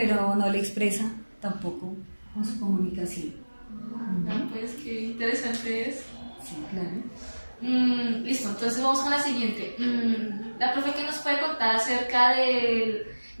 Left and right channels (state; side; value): inverted; both; correlation -1.00